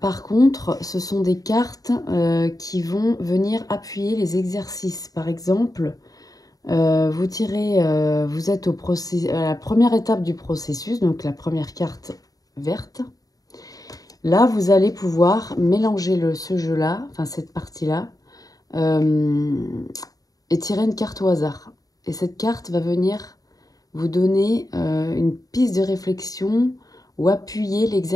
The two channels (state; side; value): late; right; 0.18 ms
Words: contre, ce sont des cartes qui vont venir appuyer les exercices. Par exemple, vous êtes à la première étape du processus, donc la première carte verte. Là, vous allez pouvoir mélanger ce jeu-là, enfin cette partie-là, et tirer une carte au hasard. Et cette carte va venir vous donner une piste de réflexion ou appuyer